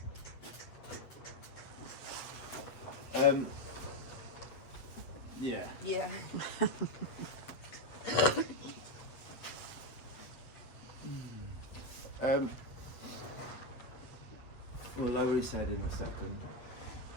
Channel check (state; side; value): late; right; 8.2 ms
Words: yeah. Yeah. We'll lower his head in a second.